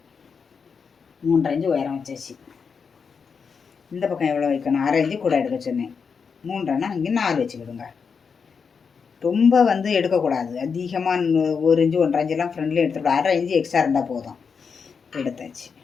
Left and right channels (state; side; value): quieter; right; 5.9 dB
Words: 3.5 இன்ச்சு உயரம் வச்சாச்சு. இந்த பக்கம் எவ்வளோ வைக்கணும், 1/2 இன்ச்சு கூட எடுக்க சொன்னேன். 3.5னா இங்கே 4 வச்சுக்கிடுங்க. ரொம்ப வந்து எடுக்கக்கூடாது. அதிகமாக 1 இன்ச்சு 1.5 இன்ச்செல்லாம் ஃப்ரெண்ட்லேயே எடுத்துக்கூடாது. 1/2 இன்ச்சு எக்ஸ்ட்ரா இருந்தால் போதும். எடுத்தாச்சு.